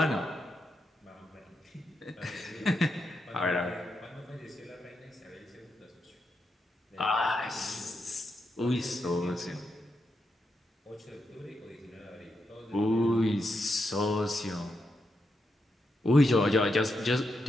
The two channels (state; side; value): normal; both; correlation 0.84